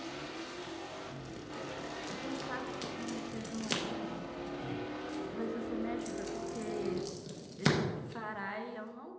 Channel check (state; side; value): identical; both; correlation 1.00